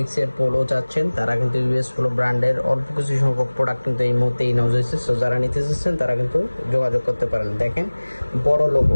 পোলো চাচ্ছেন তারা কিন্তু ইউএস পোলো ব্র্যান্ডের অল্প কিছু সংখ্যক প্রোডাক্ট কিন্তু এই মুহূর্তে ইনহাউস হয়েছে। সো যারা নিতে চাচ্ছেন তারা কিন্তু যোগাযোগ করতে পারেন। দেখেন বড় লোগো,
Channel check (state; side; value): inverted; both; correlation -1.00